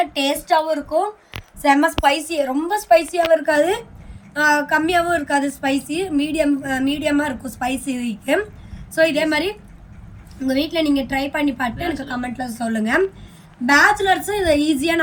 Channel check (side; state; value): both; identical; correlation 1.00